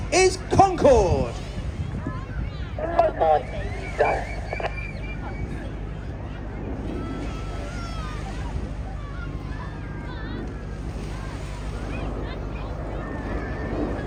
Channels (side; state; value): both; identical; correlation 1.00